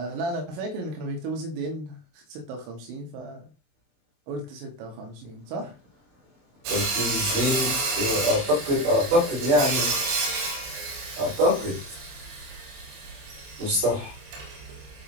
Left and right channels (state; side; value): late; left; 24 ms